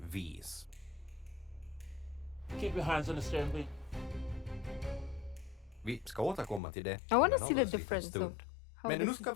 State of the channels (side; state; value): right; drops out; at 6.6 s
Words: Keep your hands on the steering wheel. Vi ska återkomma till det. I want to en see the alldeles liten difference stund. of how Men nu this ska is